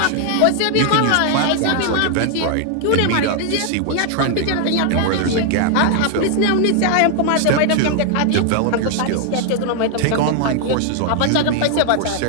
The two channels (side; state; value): both; different; correlation 0.00